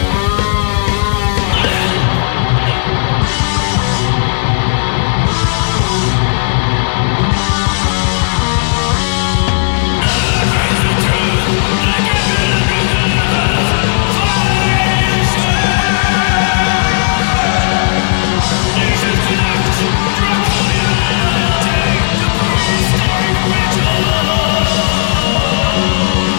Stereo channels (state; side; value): silent; right; 70 dB below the other